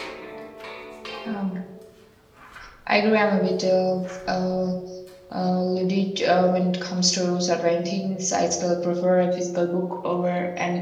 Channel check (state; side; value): identical; both; correlation 1.00